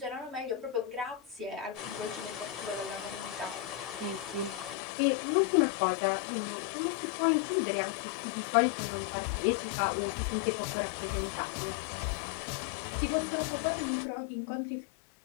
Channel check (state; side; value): drops out; right; at 4.8 s